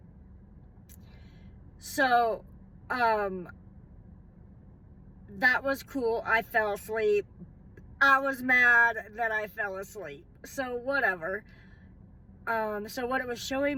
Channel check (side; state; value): both; identical; correlation 1.00